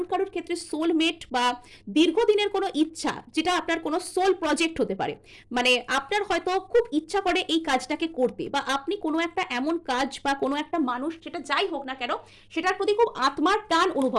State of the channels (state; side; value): identical; both; correlation 1.00